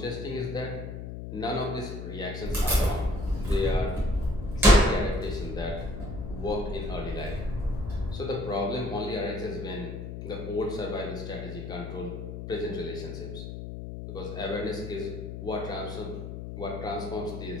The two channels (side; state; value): left; noise; hum, 7 dB below the sound